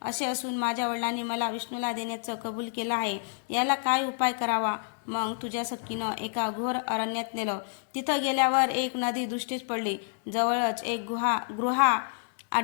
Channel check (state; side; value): silent; right; 59 dB below the other